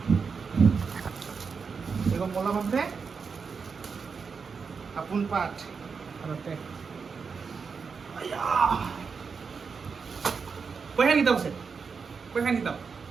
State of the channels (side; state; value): left; quieter; 5.5 dB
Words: এগো মলম আছে, আপোন পাঠ ঘৰতে। পইচা কিতাপ আছে, পইচা কিতাপ